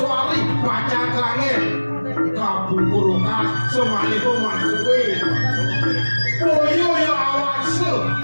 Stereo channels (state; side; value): inverted; both; correlation -1.00